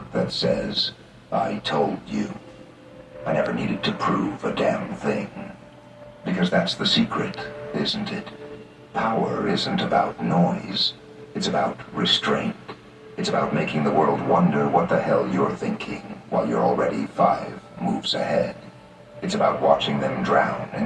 that says, I told you. I never needed to prove a damn thing. Because that's the secret, isn't it? Power isn't about noise. It's about restraint. It's about making the world wonder what the hell you're thinking while you're already 5 moves ahead. It's about watching them drown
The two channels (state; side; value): identical; both; correlation 1.00